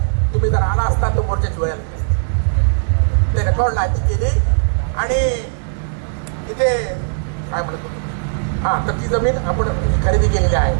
तुम्ही जर आला असता तो मोर्चाची वेळ ते रेकॉर्ड लाईट केली. आणि इथे काय म्हणतो हा तर ती जमीन आपण खरेदी केलेली आहे.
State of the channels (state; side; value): silent; left; digital silence